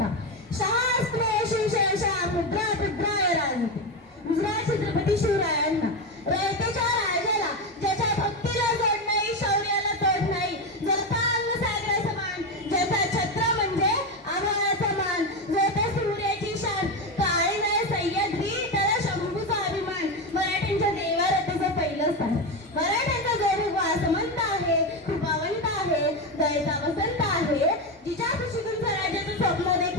शास्त्र शिवशा मुद्रा मुद्राय राजते. गुजरात छत्रपती शिवरायांना रयतेच्या राजाला ज्याच्या भक्तीला जोड नाही, शौर्याला तोड नाही, ज्याचा अंग सागरा समान, ज्याचा छत्र म्हणजे आभाळाचा मान, ज्याचा सूर्याची शान, काळे नाही सह्याद्री त्याला शंभूचा अभिमान. मराठ्यांच्या देवारतीचं पहिलं स्थान. मराठ्यांचा जो वासमंत आहे, कृपावंत आहे, दयेचा वसंत आहे, जिच्या खुशीतून स्वराज्याचं स्वप्न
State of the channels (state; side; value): normal; both; correlation 0.13